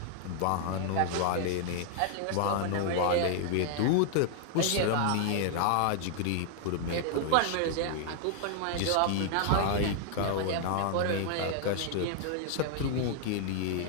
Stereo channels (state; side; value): different; both; correlation 0.00